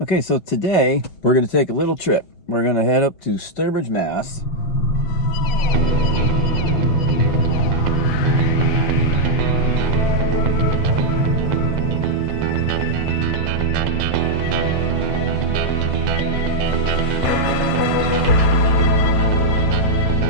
Okay, so today we're going to take a little trip. We're going to head up to Sturbridge, Mass.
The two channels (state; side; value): late; right; 5.9 ms